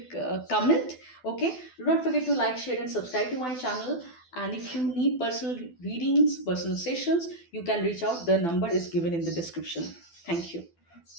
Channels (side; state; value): right; late; 12 ms